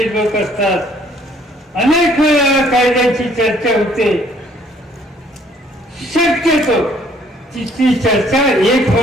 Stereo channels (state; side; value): normal; both; correlation 0.62